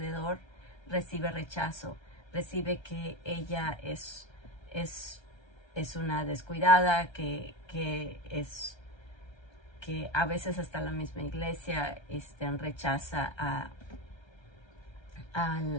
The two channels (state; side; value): late; right; 1.3 ms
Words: recibe rechazo, recibe que ella es una descuidada, que a veces hasta la misma iglesia rechaza a